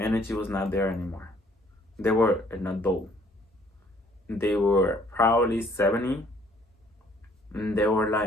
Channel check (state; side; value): normal; both; correlation 0.61